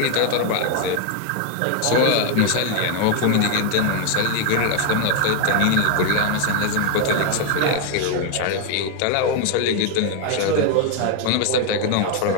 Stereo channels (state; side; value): different; both; correlation 0.01